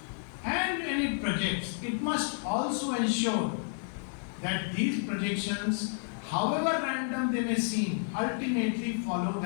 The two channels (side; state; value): right; silent; 57 dB below the other